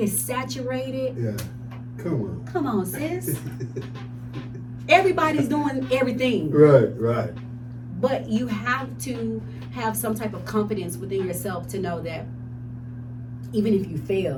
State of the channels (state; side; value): identical; both; correlation 1.00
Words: saturated. Yeah. Come on, sis. Everybody's doing everything. Right. But you have to have some type of confidence within yourself to know that even if you